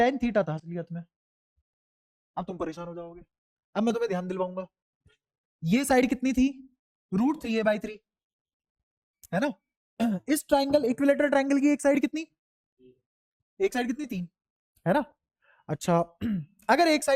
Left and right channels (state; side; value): identical; both; correlation 1.00